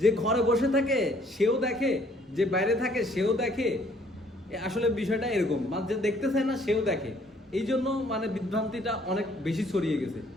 যে ঘরে বসে থাকে সেও দেখে, যে বাইরে থাকে সেও দেখে। আসলে বিষয়টা এরকম, মানে যে দেখতে চায় না সেও দেখে। এই জন্য মানে বিভ্রান্তিটা অনেক বেশি ছড়িয়ে গেছে।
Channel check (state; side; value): normal; both; correlation 0.61